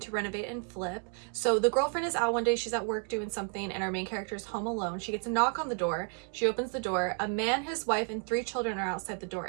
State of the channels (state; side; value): quieter; left; 39.6 dB